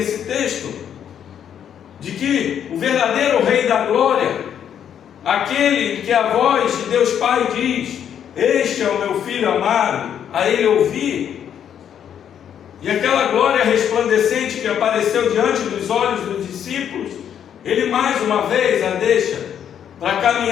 texto, de que o verdadeiro Rei da Glória, aquele que a voz de Deus Pai diz: este é o meu Filho amado, a ele ouvi. E aquela glória resplandecente que apareceu diante dos olhos dos discípulos, ele mais uma vez a deixa para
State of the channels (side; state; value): right; quieter; 9.0 dB